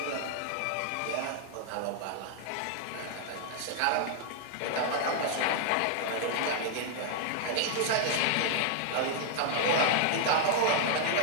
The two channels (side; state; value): both; different; correlation -0.01